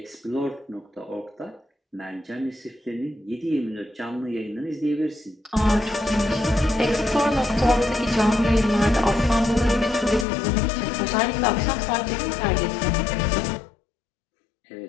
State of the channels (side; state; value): right; drops out; at 10.2 s